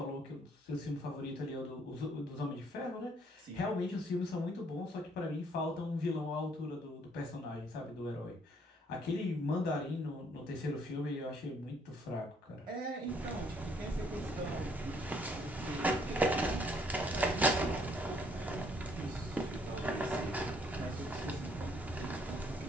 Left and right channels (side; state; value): both; normal; correlation 0.65